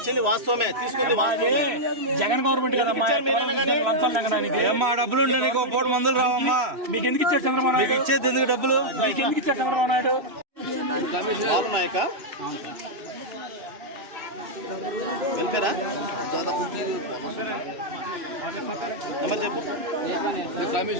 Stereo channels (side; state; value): left; late; 3.1 ms